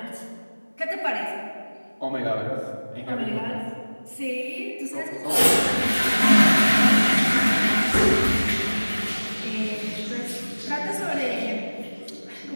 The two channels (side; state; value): both; inverted; correlation -1.00